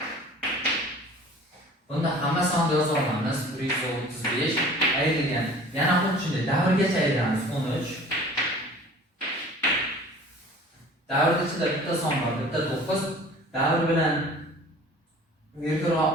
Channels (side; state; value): both; normal; correlation 0.46